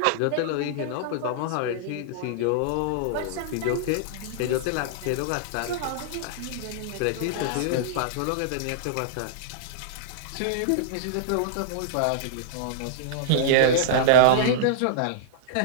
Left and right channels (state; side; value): different; both; correlation -0.02